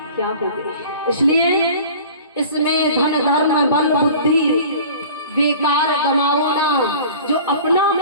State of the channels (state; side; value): inverted; both; correlation -0.43